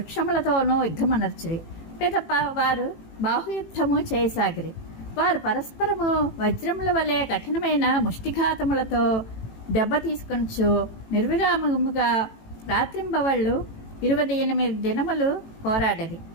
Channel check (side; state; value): right; late; 18 ms